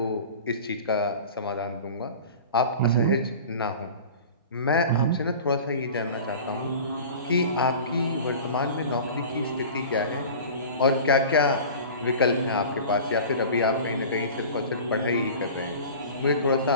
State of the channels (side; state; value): both; inverted; correlation -0.38